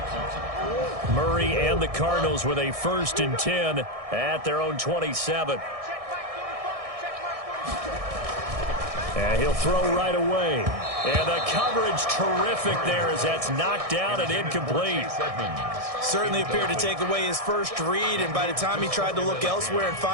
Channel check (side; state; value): left; late; 1.6 ms